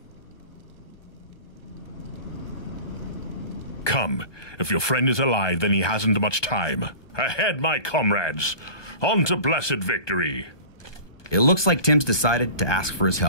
Come. If your friend is alive, then he hasn't much time. Ahead, my comrades! On to blessed victory! It looks like Tim's decided to ask for his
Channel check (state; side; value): late; right; 1.2 ms